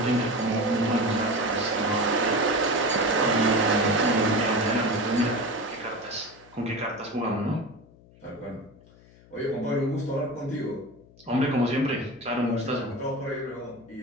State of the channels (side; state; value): left; noise; hum, 25 dB below the sound